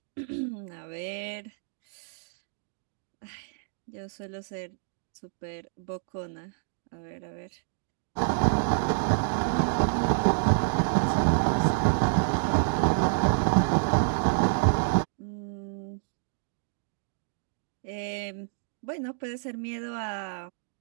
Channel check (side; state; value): left; silent; digital silence